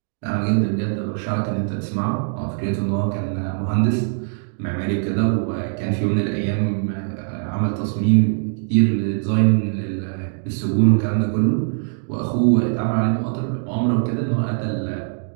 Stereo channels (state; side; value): silent; left; digital silence